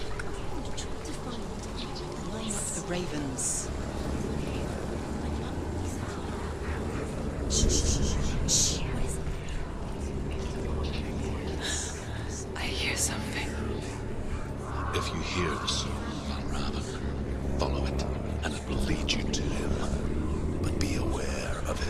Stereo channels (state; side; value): identical; both; correlation 1.00